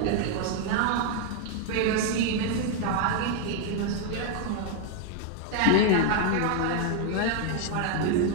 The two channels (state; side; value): different; both; correlation 0.00